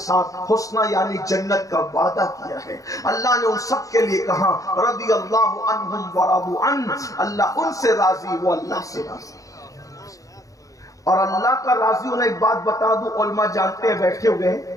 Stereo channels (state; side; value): late; right; 0.16 ms